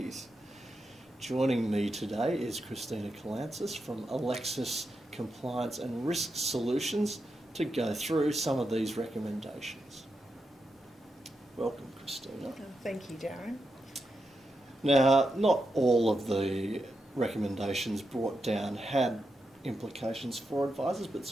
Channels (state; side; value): normal; both; correlation 0.86